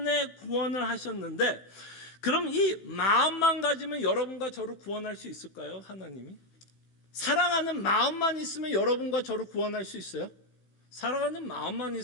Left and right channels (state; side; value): late; right; 16 ms